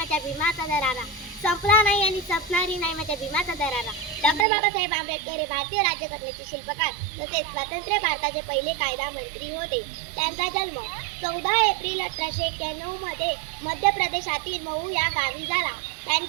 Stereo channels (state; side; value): drops out; left; at 4.5 s